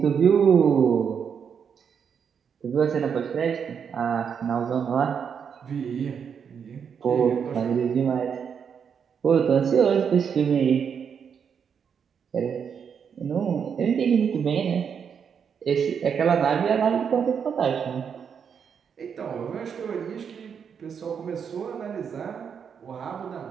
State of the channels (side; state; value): left; quieter; 7.1 dB